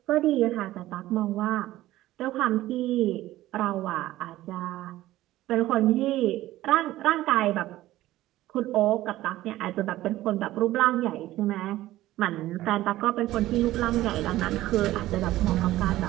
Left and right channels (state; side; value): quieter; left; 15.6 dB